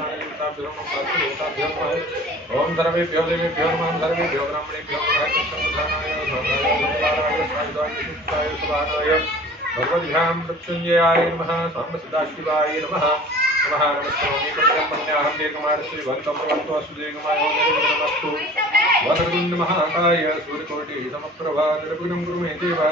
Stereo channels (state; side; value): normal; both; correlation 0.45